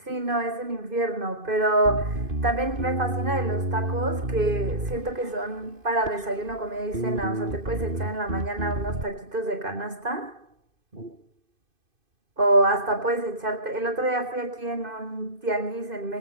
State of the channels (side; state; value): left; late; 2.5 ms